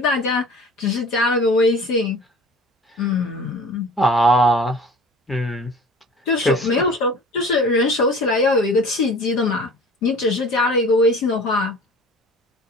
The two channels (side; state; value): both; normal; correlation 0.43